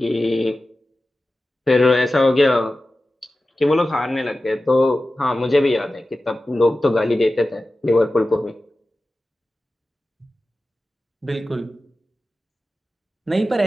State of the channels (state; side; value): normal; both; correlation 0.95